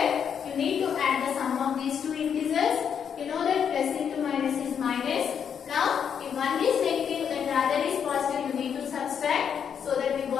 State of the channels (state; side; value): quieter; right; 7.7 dB